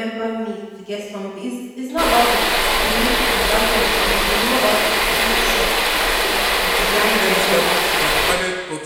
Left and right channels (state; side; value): identical; both; correlation 1.00